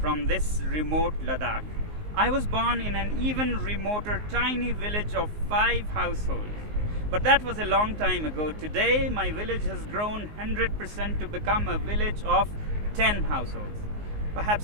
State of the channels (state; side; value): late; left; 19 ms